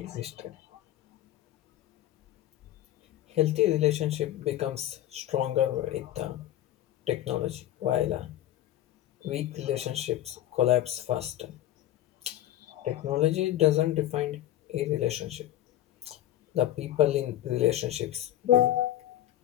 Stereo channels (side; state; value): right; quieter; 13.2 dB